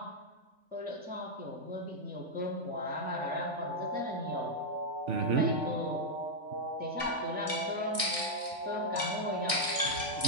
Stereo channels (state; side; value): late; left; 3.5 ms